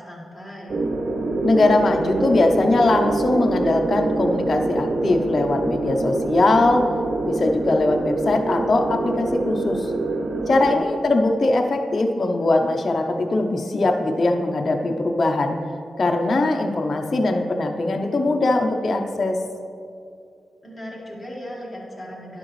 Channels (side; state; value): both; normal; correlation 0.91